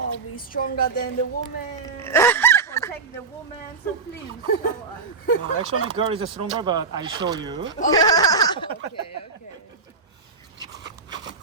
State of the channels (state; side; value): quieter; left; 4.7 dB